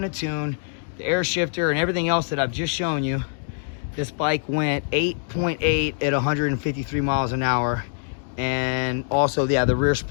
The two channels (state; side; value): silent; right; digital silence